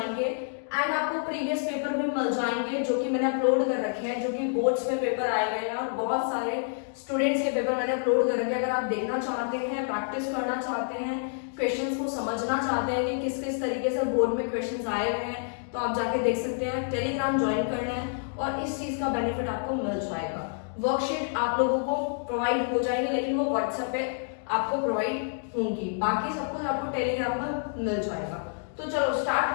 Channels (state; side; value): silent; right; digital silence